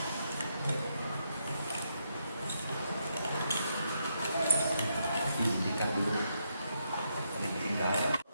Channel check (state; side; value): inverted; both; correlation -0.80